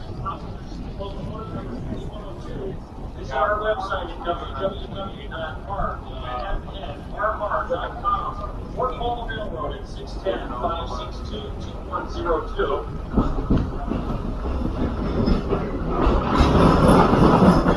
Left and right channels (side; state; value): both; identical; correlation 1.00